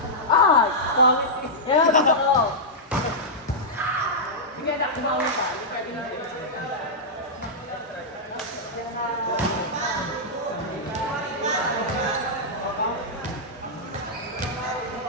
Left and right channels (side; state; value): both; normal; correlation -0.09